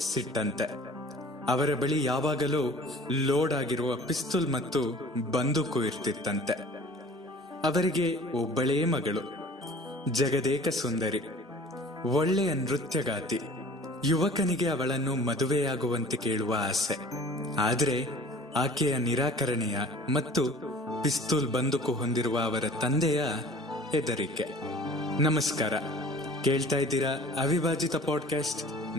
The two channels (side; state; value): both; normal; correlation 0.47